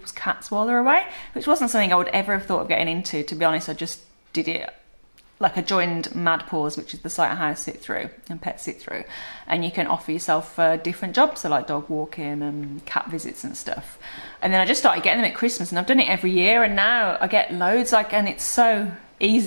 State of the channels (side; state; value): both; inverted; correlation -1.00